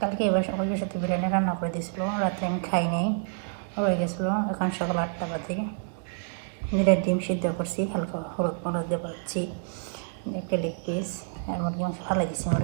কালকে এবার ওই সাথে বিরিয়ানি রান্না করে দিয়েছিল, রাত্রে আমি খাই নাই, রয়ে গেছিলো। এখন সকাল 8টা বাজে। নিজের ডিম সিদ্ধ করছি, হালকা হলুদ মরদ দিয়ে পাচ্ছি, একটা লেগ পিস আর মুরগি মাংস ভালো দিচ্ছি।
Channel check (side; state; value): left; silent; 59 dB below the other